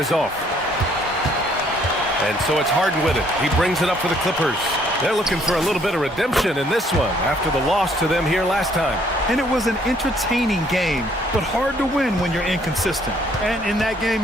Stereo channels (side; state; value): both; normal; correlation 0.64